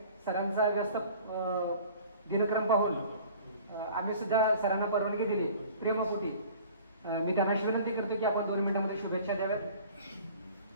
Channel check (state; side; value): inverted; both; correlation -0.47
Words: सरांचा व्यस्त दिनक्रम पाहून आम्ही सुद्धा सरांना परवानगी दिली प्रेमपोटी. मी त्यांना विनंती करतो की आपण 2 मिनिटांमध्ये शुभेच्छा द्याव्यात.